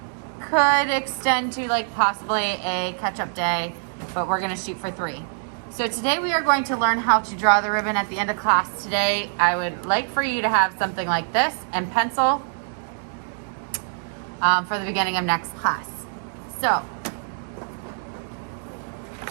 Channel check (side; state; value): left; silent; digital silence